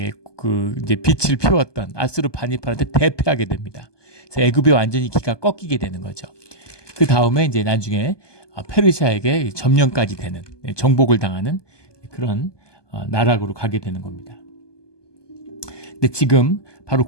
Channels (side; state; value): right; late; 1.2 ms